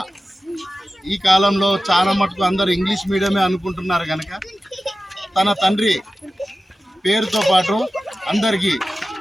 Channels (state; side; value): normal; both; correlation 0.94